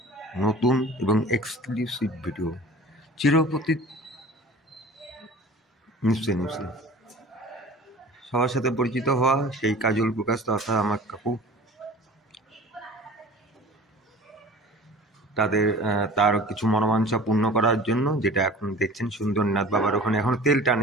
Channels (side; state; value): both; normal; correlation 0.42